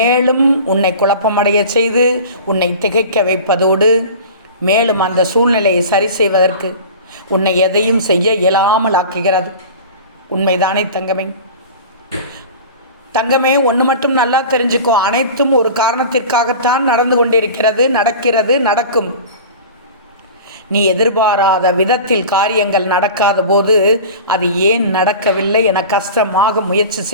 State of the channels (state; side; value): inverted; both; correlation -0.37